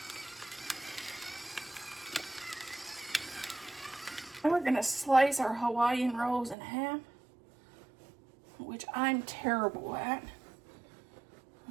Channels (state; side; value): drops out; left; at 6.6 s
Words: And we're going to slice our Hawaiian rolls in half, which I'm terrible at.